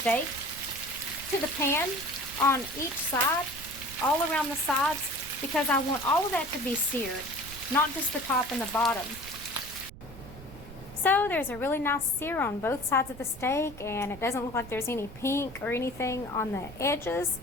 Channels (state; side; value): noise; right; rumble, 16 dB below the sound